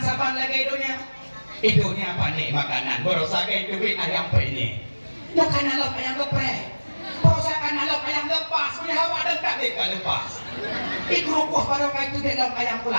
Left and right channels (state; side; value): inverted; both; correlation -1.00